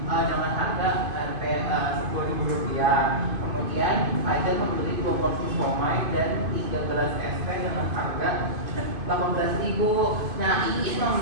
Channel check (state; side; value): late; left; 2.5 ms